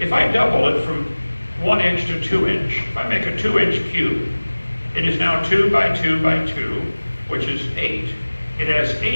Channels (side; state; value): both; inverted; correlation -1.00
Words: If I double it from 1 inch to 2 inch. If I make a 2-inch cube, it is now 2 by 2 by 2, which is 8. It has